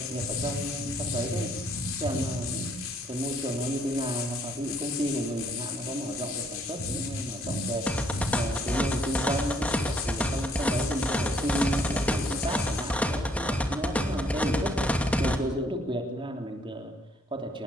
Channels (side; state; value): both; normal; correlation 0.66